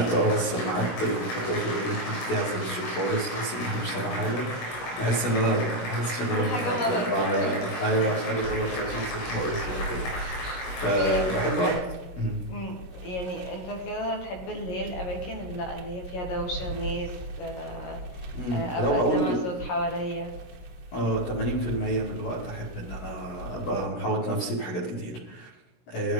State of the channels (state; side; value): late; right; 16 ms